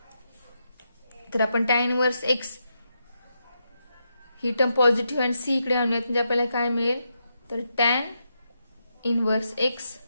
तर आपण tan इनवर्स x ही टर्म पॉझिटिव्ह आणि c इकडे आणूयात, म्हणजे आपल्याला काय मिळेल तर tan inverse x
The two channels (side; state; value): both; inverted; correlation -0.83